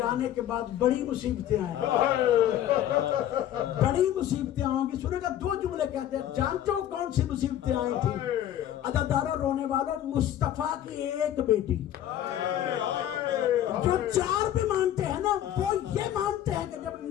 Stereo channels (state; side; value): quieter; right; 11.6 dB